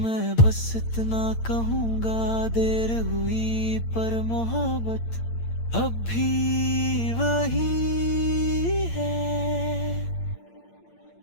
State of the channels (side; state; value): right; late; 8.8 ms